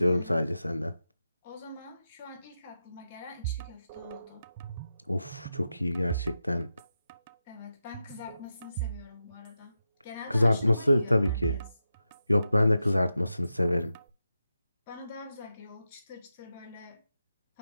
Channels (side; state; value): both; inverted; correlation -0.89